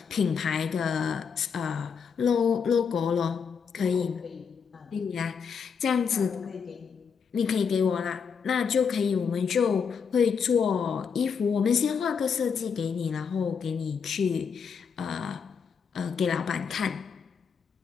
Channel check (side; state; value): right; quieter; 6.3 dB